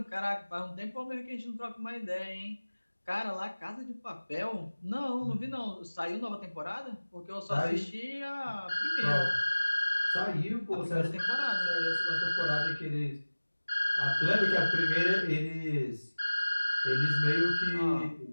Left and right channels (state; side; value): inverted; both; correlation -1.00